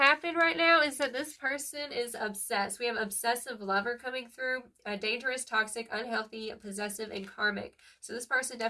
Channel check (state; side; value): identical; both; correlation 1.00